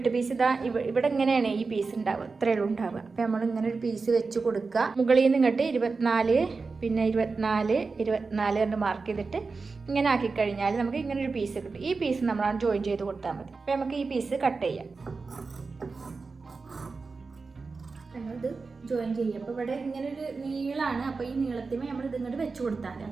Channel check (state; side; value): quieter; left; 4.3 dB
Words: പീസ് ഇതാ ഇവിടെ ഇങ്ങനെയാണ് ഈ പീസ് ഉണ്ടാവുക, ഇത്രയേ ഉള്ളൂ ഉണ്ടാവുക. അപ്പോൾ നമ്മൾ ഇങ്ങനെ ഒരു പീസ് വെച്ച് കൊടുക്കുക. മുകളിൽ നിന്ന് ഇങ്ങോട്ട് 24, പിന്നെ 24, 24 കണ്ട് മാർക്ക് ചെയ്തിട്ട് ഇങ്ങനെ ആക്കി കഴിഞ്ഞാൽ നമുക്ക് ഇങ്ങനെ ഒരു പീസ് കിട്ടും. ഈ പീസ് നമ്മളാണ് ജോയിൻ ചെയ്ത് കൊടുത്താൽ മതി. അപ്പോൾ നമുക്ക് ഈ പീസ് കട്ട് ചെയ്യാം. നമ്മളിത് ജോയിൻ ചെയ്യും. അപ്പോൾ ഇവിടെ ഇങ്ങനെ ഒരു നീളമാണ്. അപ്പോൾ ഈ നീളത്തിന് നമ്മൾ ഇത് ഇങ്ങോട്ട് വെച്ച് കൊടുത്താൽ മതി.